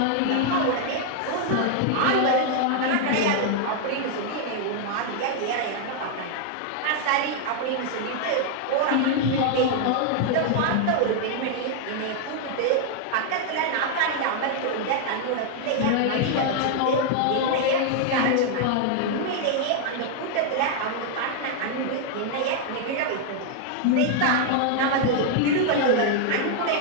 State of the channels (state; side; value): different; both; correlation 0.00